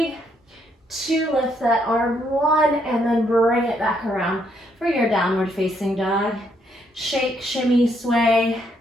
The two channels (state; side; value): normal; both; correlation 0.73